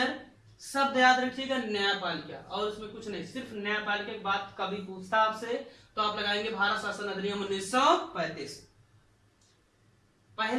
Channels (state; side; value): identical; both; correlation 1.00